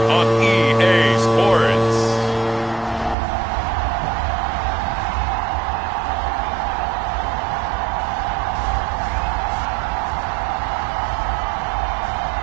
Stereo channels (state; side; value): drops out; left; at 3.2 s